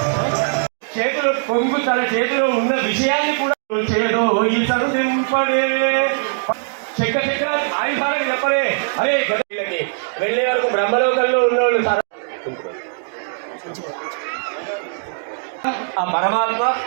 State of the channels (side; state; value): left; silent; digital silence